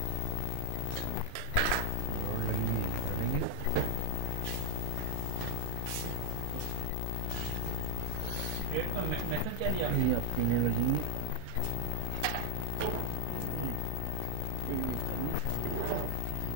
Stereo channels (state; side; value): different; both; correlation 0.00